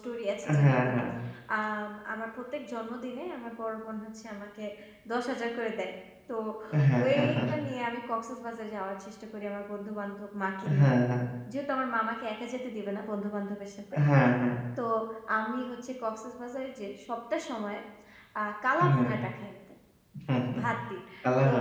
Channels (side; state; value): both; identical; correlation 1.00